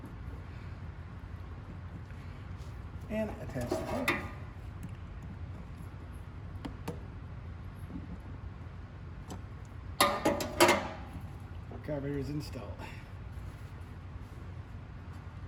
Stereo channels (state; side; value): identical; both; correlation 1.00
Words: And attach the pump. Carburetor is installed.